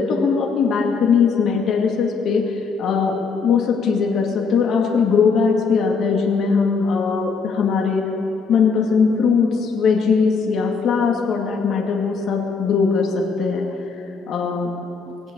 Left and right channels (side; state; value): right; quieter; 5.1 dB